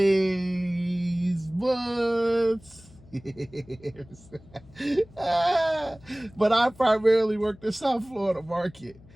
but but I primarily work the South Florida market.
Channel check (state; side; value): noise; left; hum, 24 dB below the sound